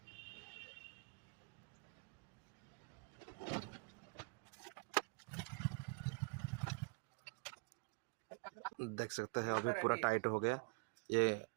देख सकते हैं अभी पूरा टाइट हो गया। ये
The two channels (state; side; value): quieter; left; 30.9 dB